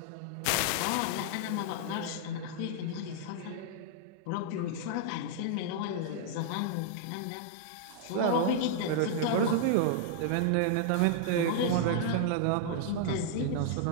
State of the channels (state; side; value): different; both; correlation -0.01